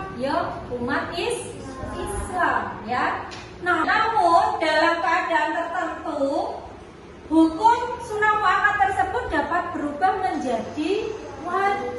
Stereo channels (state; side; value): identical; both; correlation 1.00